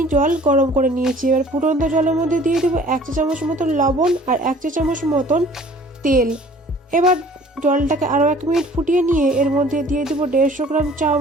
জল গরম করে নিয়েছি। এবার ফুটন্ত জলের মধ্যে দিয়ে দেবো 1 চা চামচ মতন লবণ আর 1 চা চামচ মতন তেল। এবার জলটাকে আরও 1 মিনিট ফুটিয়ে নিয়ে এর মধ্যে দিয়ে দেবো 150 গ্রাম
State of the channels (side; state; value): both; normal; correlation 0.51